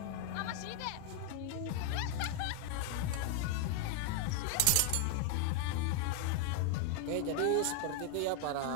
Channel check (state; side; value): different; both; correlation 0.00